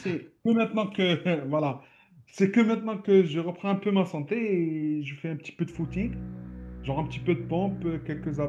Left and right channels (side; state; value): both; identical; correlation 1.00